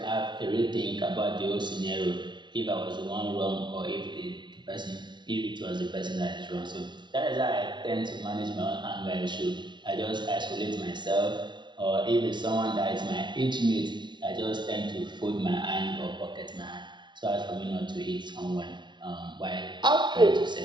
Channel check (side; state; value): left; late; 0.22 ms